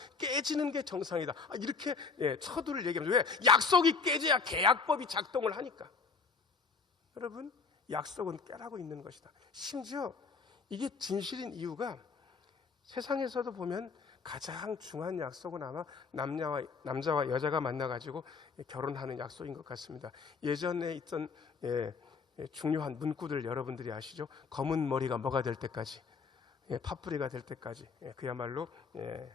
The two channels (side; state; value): right; quieter; 5.1 dB